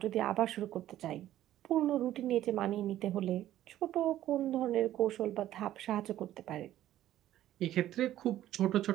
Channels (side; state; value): left; quieter; 13.1 dB